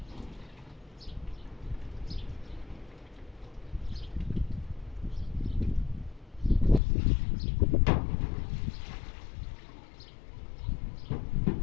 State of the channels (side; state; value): right; drops out; at 6.8 s